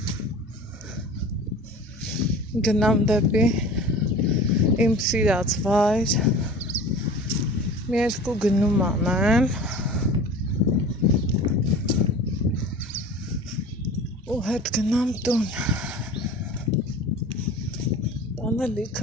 Գնամ դեպի իմ սիրած վայր, մի երկու գնում անեմ ու հետ գնամ տուն, տանը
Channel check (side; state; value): both; normal; correlation 0.39